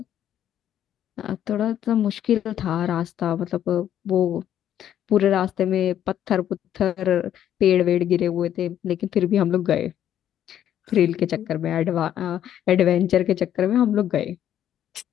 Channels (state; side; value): quieter; right; 10.7 dB